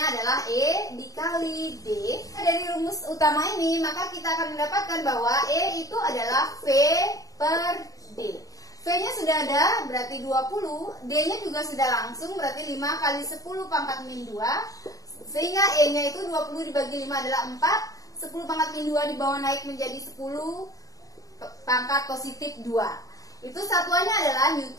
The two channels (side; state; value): right; late; 0.17 ms